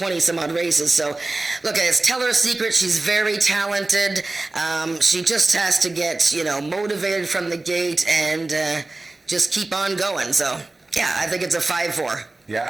races. So, look, it's Tell Her a Secret. She's very talented. She just has to get, motivated from the gate and just keep on going. So, yeah, I think it's a 5-4. Yeah,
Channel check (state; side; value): quieter; left; 3.1 dB